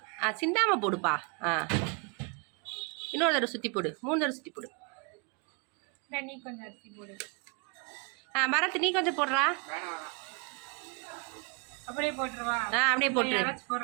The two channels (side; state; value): left; quieter; 31.9 dB